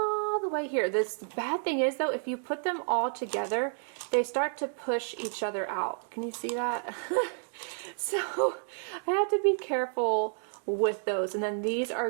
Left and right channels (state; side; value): silent; left; digital silence